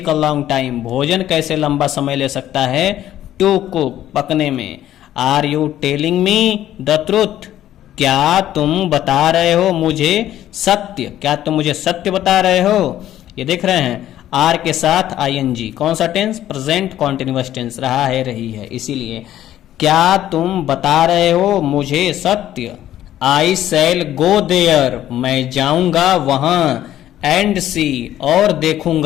a long time भोजन कैसे लंबा समय ले सकता है, टू कुक पकने में, are you telling me the truth क्या तुम बता रहे हो मुझे सत्य, क्या तुम मुझे सत्य बता रहे हो। ये देख रहे हैं आर के साथ आईएनजी, कौन सा टेंस, प्रेजेंट कॉन्टिन्यूअस टेंस, रहा है रही है, इसीलिए क्या तुम बता रहे हो मुझे सत्य, आई शैल गो देयर मैं जाऊंगा वहां, एंड सी और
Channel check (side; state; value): right; quieter; 12.4 dB